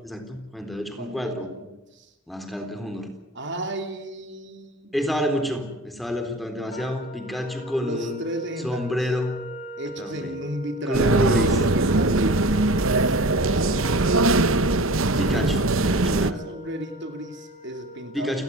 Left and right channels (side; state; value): both; normal; correlation 0.38